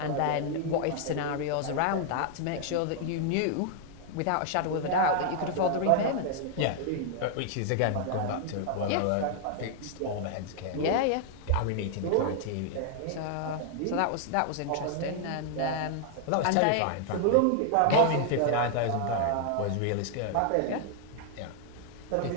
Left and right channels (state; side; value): different; both; correlation 0.00